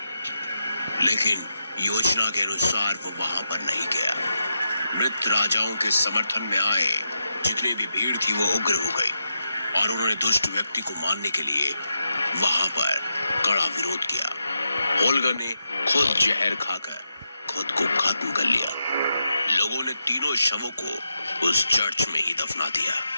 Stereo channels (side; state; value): both; inverted; correlation -0.85